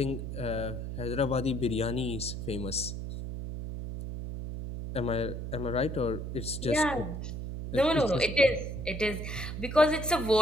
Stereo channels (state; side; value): noise; right; hum, 6 dB below the sound